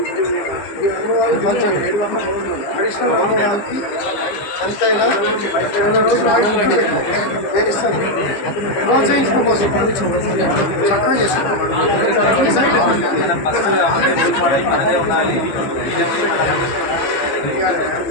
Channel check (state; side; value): late; right; 15 ms